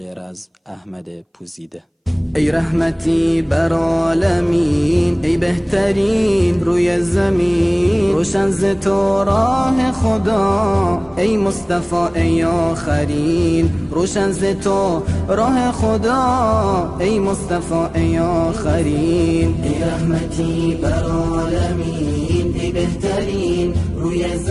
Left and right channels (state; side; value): identical; both; correlation 1.00